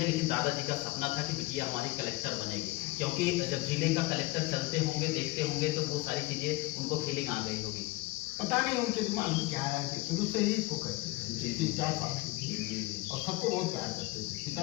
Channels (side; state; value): right; quieter; 20.6 dB